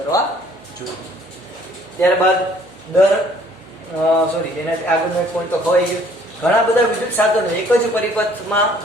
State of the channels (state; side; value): noise; right; hum, 29 dB below the sound